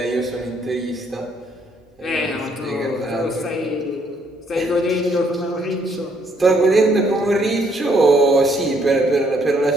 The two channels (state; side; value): normal; both; correlation 0.69